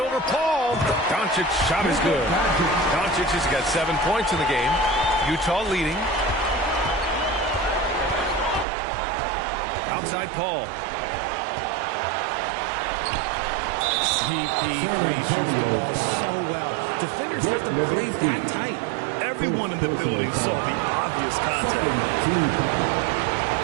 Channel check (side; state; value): left; drops out; at 8.7 s